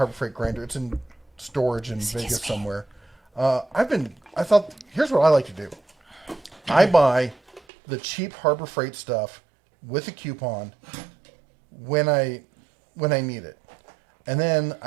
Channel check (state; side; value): drops out; left; at 7.6 s